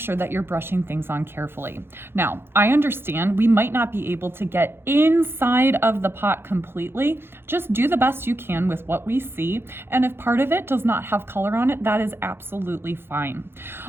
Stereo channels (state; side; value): late; left; 0.11 ms